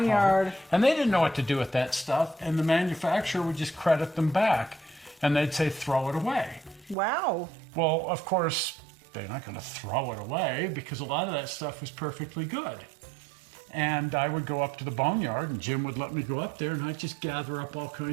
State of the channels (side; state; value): left; drops out; at 7.0 s